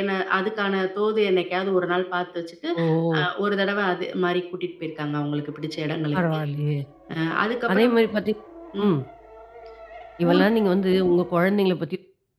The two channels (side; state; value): both; identical; correlation 1.00